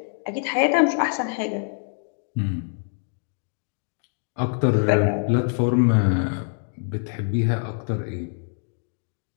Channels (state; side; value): silent; right; 62 dB below the other